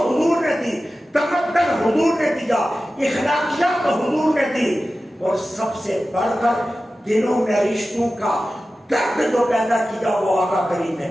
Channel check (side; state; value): both; normal; correlation 0.94